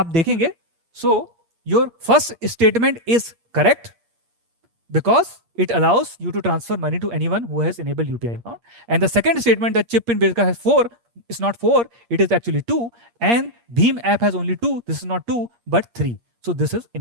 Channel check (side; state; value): left; late; 8.5 ms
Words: देखेंगे, so your first statement is correct because it allows you to transfer money to anyone who has enabled UPI account. And the second statement that chip pin based has 4 is not 4, it is actually 2, and Bheem app has only 2. This is not 2 but 3. So this is